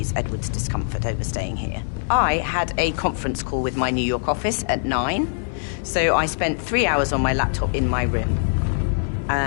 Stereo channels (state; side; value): silent; right; 60 dB below the other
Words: Edward's discomfort over staying here. I had a conference call with my New York office at 9, so I spent 3 hours on my laptop in my room